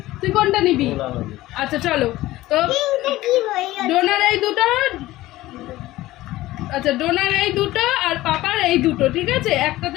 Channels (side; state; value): right; quieter; 16.9 dB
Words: তুই কোনটা নিবি? আচ্ছা চলো। তো ডোনার এই দুটো, আচ্ছা ডোনার এই দুটো আর পাপার এই দুটো, ঠিক আছে? একটাতে